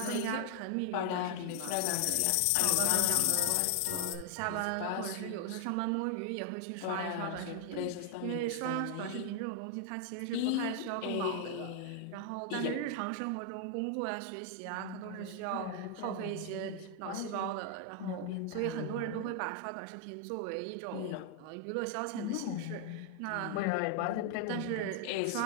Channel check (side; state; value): both; different; correlation 0.00